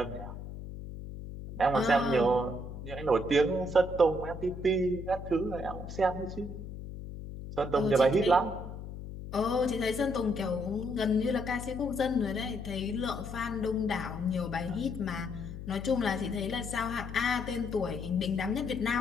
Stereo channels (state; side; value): noise; left; hum, 10 dB below the sound